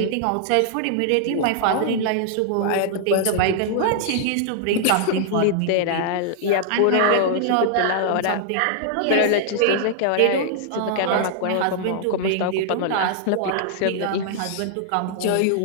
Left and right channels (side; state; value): both; different; correlation -0.01